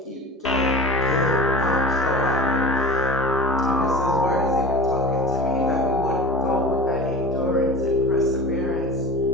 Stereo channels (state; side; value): normal; both; correlation 0.35